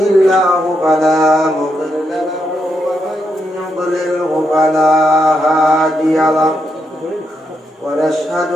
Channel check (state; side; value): normal; both; correlation 0.81